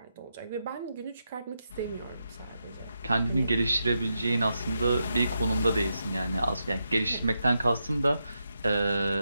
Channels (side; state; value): both; inverted; correlation -0.85